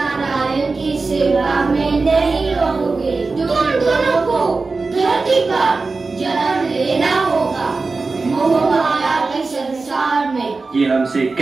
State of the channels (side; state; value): left; quieter; 3.9 dB